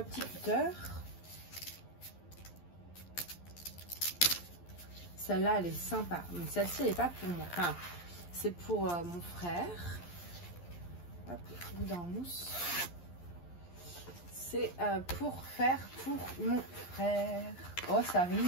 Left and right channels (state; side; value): late; right; 11 ms